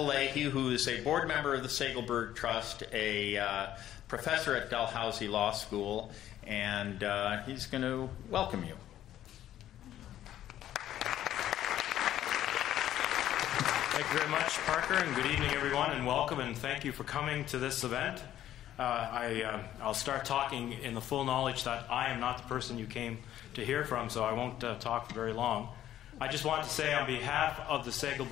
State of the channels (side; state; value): right; quieter; 12.2 dB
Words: Leahy, who is a board member of the Segelberg Trust, a professor at Dalhousie Law School, and he's going to welcome you. Thank you very much, Parker, and good evening, everyone, and welcome, and thank you for coming to this event. I'll start talking in the full knowledge that I am not the person you came to hear from, so I won't talk for very long. I just want to say on behalf of the